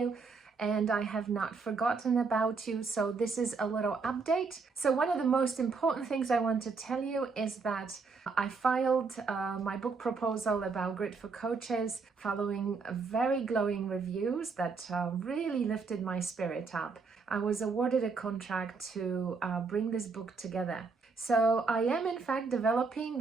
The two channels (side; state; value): left; quieter; 4.6 dB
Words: and I have not forgotten about you. So this is a little update. So one of the most important things I want to tell you is that I filed my book proposal about Grid for Coaches following very glowing reviews that really lifted my spirit up. I was awarded a contract to bring this book together. So I am in fact developing